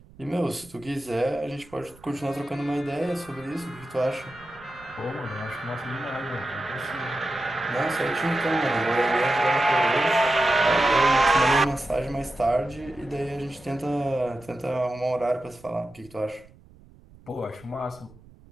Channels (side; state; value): right; noise; rumble, 24 dB below the sound